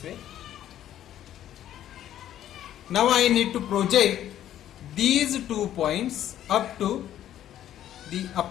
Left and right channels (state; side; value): quieter; right; 11.6 dB